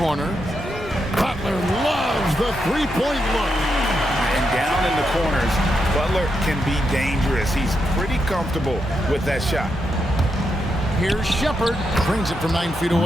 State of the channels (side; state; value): both; normal; correlation 0.83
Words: Butler loves the three-point look. And down in the corners, Butler can be dangerous. He's pretty comfortable with that shot. Here's Shepard. Brings it from 9 feet